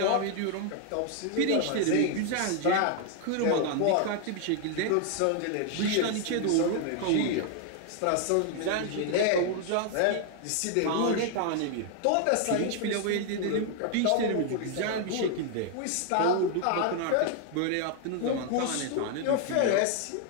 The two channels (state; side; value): different; both; correlation 0.00